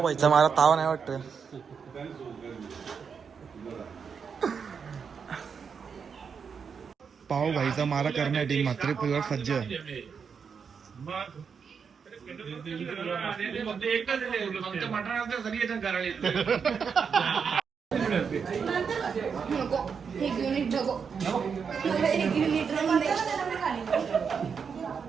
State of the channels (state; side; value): quieter; left; 6.3 dB